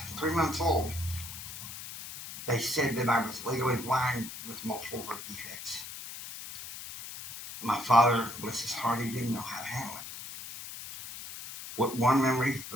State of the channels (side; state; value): left; noise; hiss, 11 dB below the sound